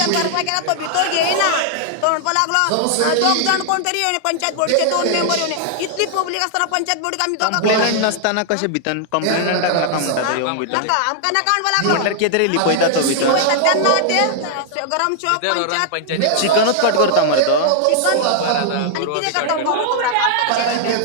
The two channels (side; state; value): both; different; correlation -0.01